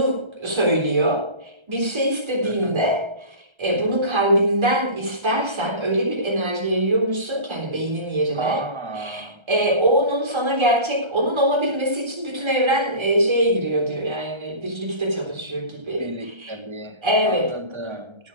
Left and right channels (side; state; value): left; late; 1.3 ms